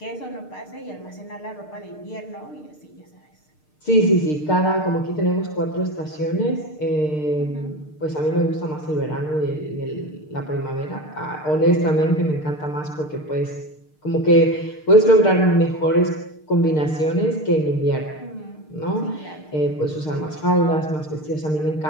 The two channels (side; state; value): right; late; 6.6 ms